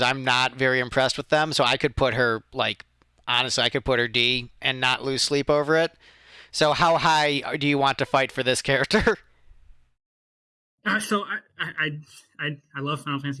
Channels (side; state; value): both; identical; correlation 1.00